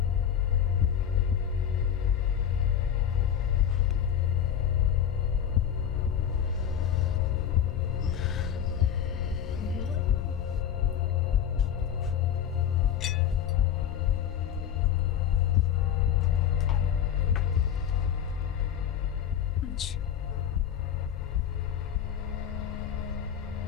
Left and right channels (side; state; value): right; quieter; 9.2 dB